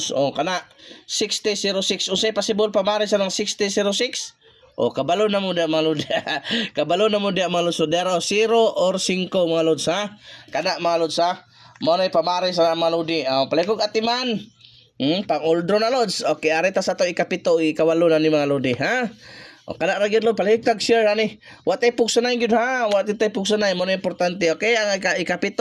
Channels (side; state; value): both; identical; correlation 1.00